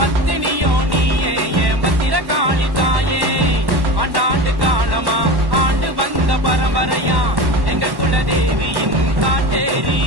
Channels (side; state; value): left; late; 1.1 ms